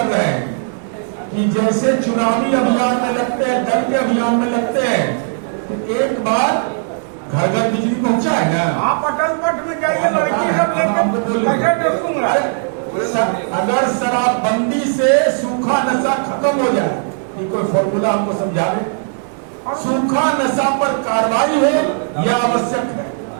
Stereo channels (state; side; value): silent; left; 64 dB below the other